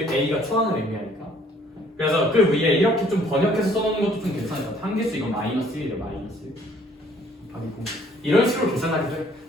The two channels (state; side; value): normal; both; correlation 0.60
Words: a가 초항을 의미하니까 그래서 그 위에 이렇게 좀 번역해서 써놓는 것도 좀 괜찮을 것 같아요. 함계수 이거 마이너스 1이죠. 마이너스 1 곱하기 공 이런 식으로 계산하기도 해요.